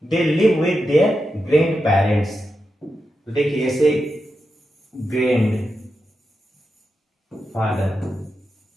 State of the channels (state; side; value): normal; both; correlation 0.88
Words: They live with their grand parents. तो देखिए, जैसे ग्रैंड फादर